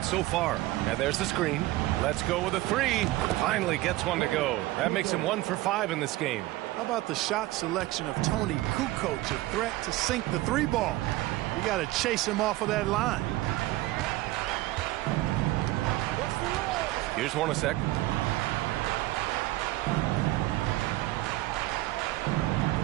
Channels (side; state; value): left; quieter; 17.8 dB